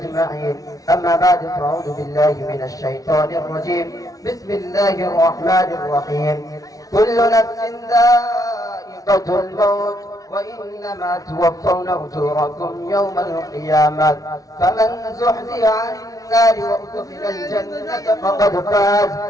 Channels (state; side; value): late; right; 0.18 ms